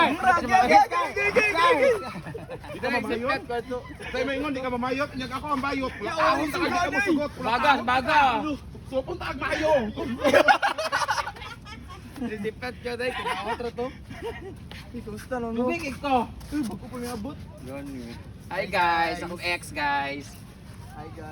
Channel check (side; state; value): both; identical; correlation 1.00